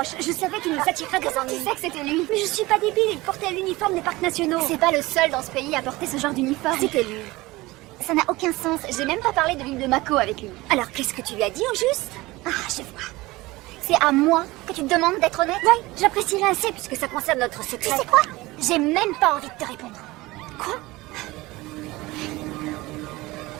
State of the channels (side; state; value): left; quieter; 20.4 dB